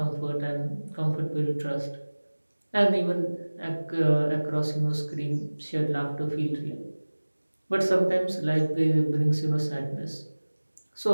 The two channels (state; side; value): inverted; both; correlation -1.00